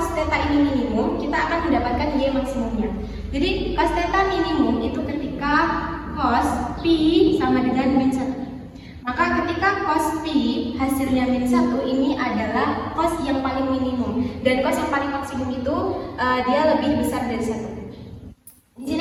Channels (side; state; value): both; identical; correlation 1.00